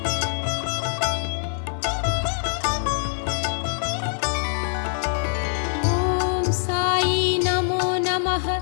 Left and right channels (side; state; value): right; silent; 63 dB below the other